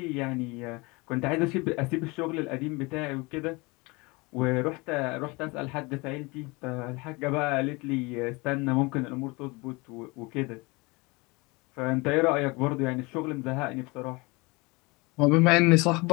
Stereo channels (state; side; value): quieter; right; 25.6 dB